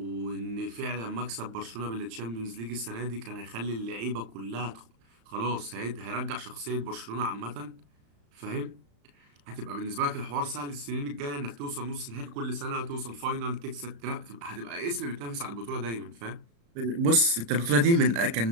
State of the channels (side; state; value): left; late; 35 ms